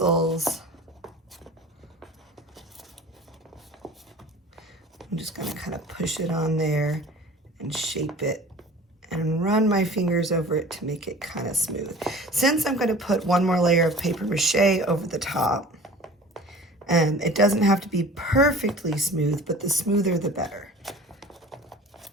I'm just going to kind of push it on there and shape it and run my fingers over it to make it kind of smooth. Since I'm going to put one more layer of paper mache over the top, and it doesn't have to be perfectly smooth, but the smoother the better.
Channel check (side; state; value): both; normal; correlation 0.43